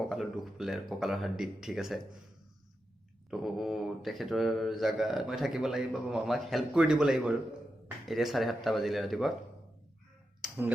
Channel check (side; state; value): both; normal; correlation 0.89